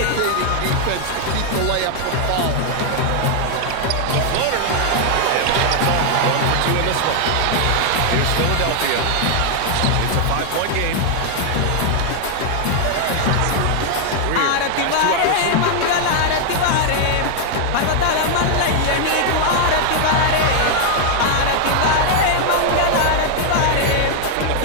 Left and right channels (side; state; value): both; different; correlation 0.00